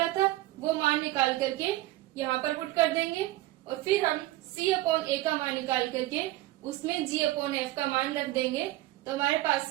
था, वो मान निकाल करके यहाँ पर पुट कर देंगे। और फिर हम c अपॉन a का मान निकाल करके उसमें g अपॉन f का मान रख देंगे। तो हमारे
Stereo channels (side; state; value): left; quieter; 17.3 dB